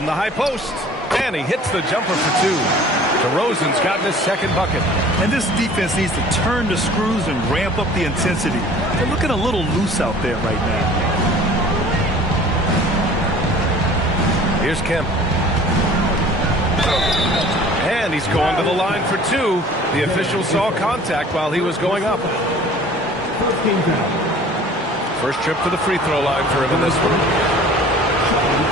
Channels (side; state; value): both; normal; correlation 0.48